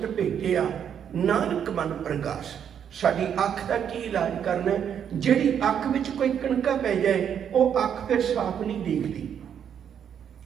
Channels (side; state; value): left; quieter; 8.5 dB